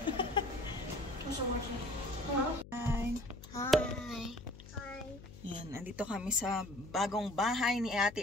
Hi. Hi. Hi. Yan, andito kami sa bagong bahay ni Ate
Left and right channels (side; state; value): left; noise; hum, 16 dB below the sound